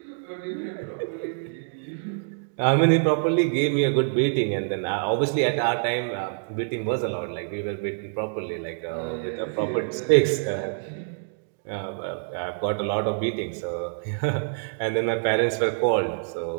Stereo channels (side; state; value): left; silent; digital silence